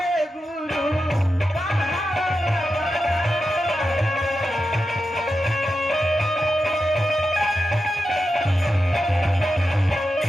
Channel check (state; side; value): normal; both; correlation 0.89